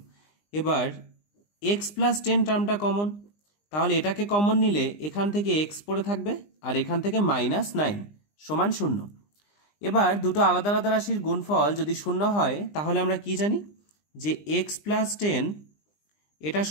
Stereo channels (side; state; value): right; late; 20 ms